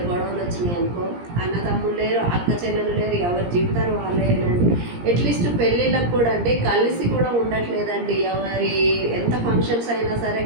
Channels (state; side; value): late; left; 17 ms